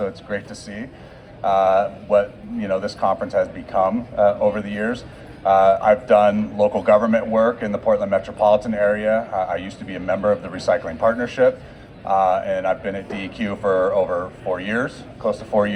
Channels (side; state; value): both; identical; correlation 1.00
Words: it's great to see what this conference has become over the years. I've done local government work in the Portland metropolitan area. I used to be a member of the Recycling Partnership, and I've been at DEQ for over 4 years, close to 4